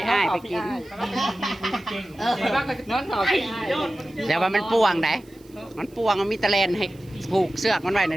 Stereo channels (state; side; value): noise; right; hiss, 29 dB below the sound